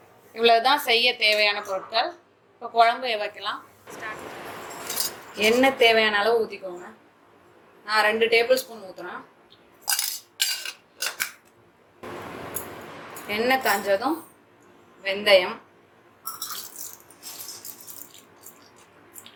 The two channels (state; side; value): identical; both; correlation 1.00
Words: இவ்வளோதான் செய்ய தேவையான பொருட்கள். இப்போ குழம்பு வைக்கலாம். எண்ணெய் தேவையான அளவு ஊற்றிக்கோங்க. நான் 2 டேபிள் ஸ்பூன் ஊற்றுறேன். எண்ணெய் காஞ்சதும் வெந்தயம்,